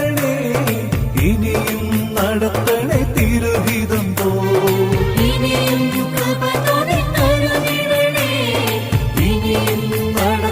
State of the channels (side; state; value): both; identical; correlation 1.00